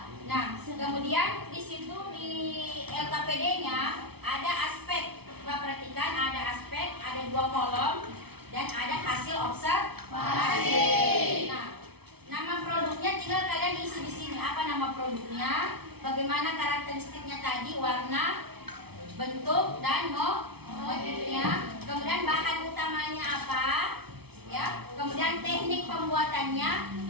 Nah, kemudian di situ di LKPD-nya ada aspek. Coba perhatikan, ada aspek, ada 2 kolom dan ada hasil observasi. Nah, nama produknya tinggal kalian isi di sini. Apa nama produknya? Bagaimana karakteristiknya tadi, warna, bentuk dan motifnya. Kemudian bahan utamanya apa? Ya. Kemudian teknik pembuatannya.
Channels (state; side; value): late; left; 0.98 ms